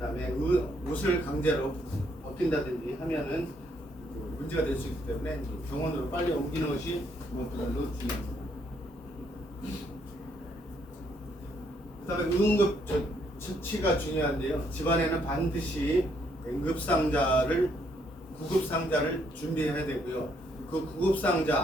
옷을 강제로 벗긴다든지 하면은 문제가 될 수 있기 때문에 병원으로 빨리 옮기는 것이 무엇보다도 중요합니다. 그다음에 응급 처치가 중요한데요. 집안에는 반드시 구급상자를 준비해야 되고요. 그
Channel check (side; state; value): both; normal; correlation 0.71